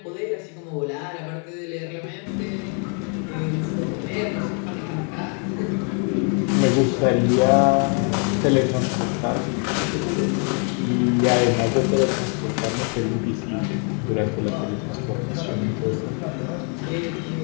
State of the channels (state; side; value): quieter; right; 39.8 dB